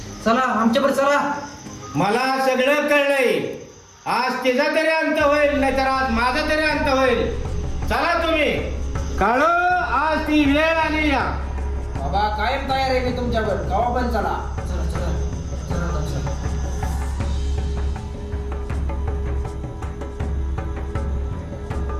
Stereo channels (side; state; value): both; identical; correlation 1.00